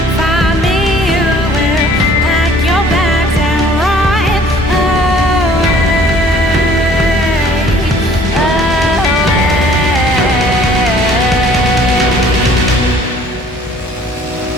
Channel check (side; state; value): both; normal; correlation 0.54